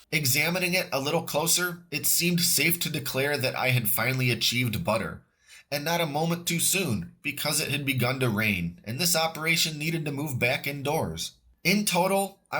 Examining it a little closer, it seemed safe to declare that I had finally achieved butter. And not a moment too soon, because it had begun to rain, and this operation needed to move back indoors. In total,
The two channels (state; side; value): identical; both; correlation 1.00